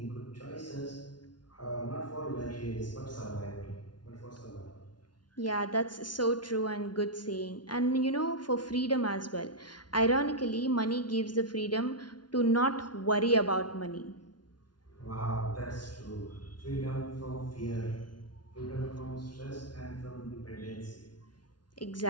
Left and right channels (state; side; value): late; right; 0.70 ms